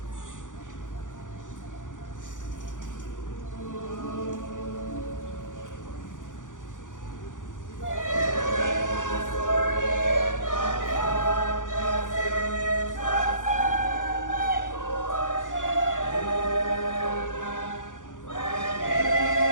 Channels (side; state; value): right; late; 0.87 ms